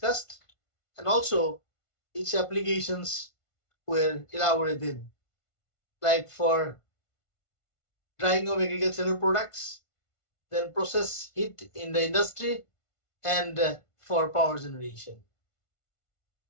and also its applications were elaborated, like for drying of agricultural products, then process heat in the industry, and for power generation.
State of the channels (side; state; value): right; late; 1.5 ms